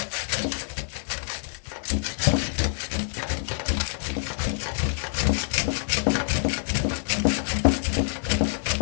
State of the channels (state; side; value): silent; right; digital silence